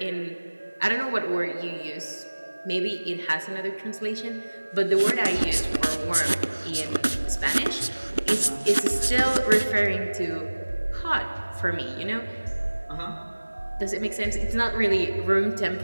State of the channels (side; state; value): both; inverted; correlation -1.00